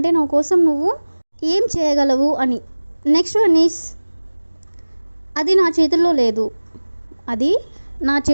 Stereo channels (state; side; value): inverted; both; correlation -1.00